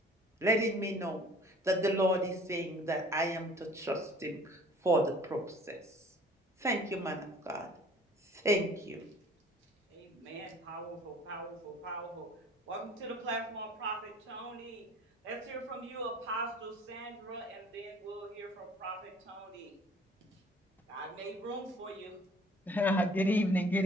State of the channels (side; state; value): both; normal; correlation 0.52